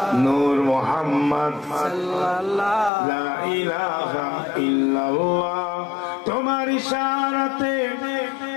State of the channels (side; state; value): right; drops out; at 2.9 s